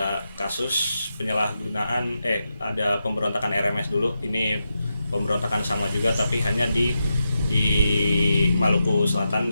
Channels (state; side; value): inverted; both; correlation -0.87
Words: kasus penyalahgunaan, ada pemberontakan RMS dulu. Ini pemberontakan sama juga tapi hanya di Maluku Selatan.